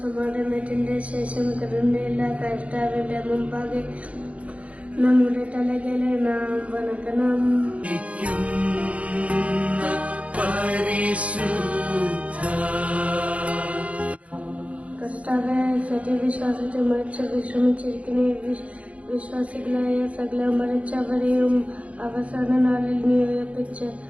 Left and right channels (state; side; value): late; left; 0.065 ms